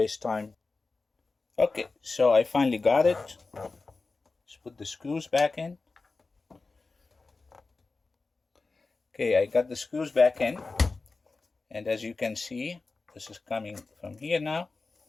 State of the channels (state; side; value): quieter; right; 3.8 dB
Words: time. Okay, so I finally got it. Let's put the screws back in. Okay, I got the screws back in. And as you can see, this is coming from here now.